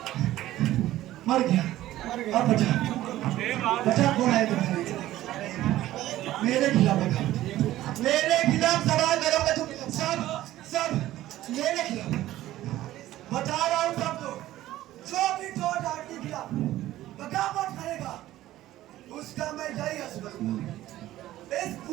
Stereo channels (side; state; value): left; quieter; 14.8 dB